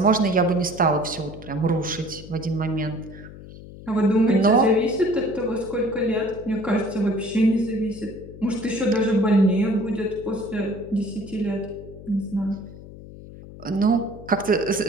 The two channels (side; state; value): left; noise; hum, 16 dB below the sound